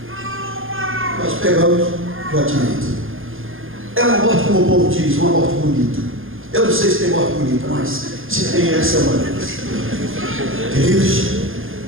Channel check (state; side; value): late; left; 0.59 ms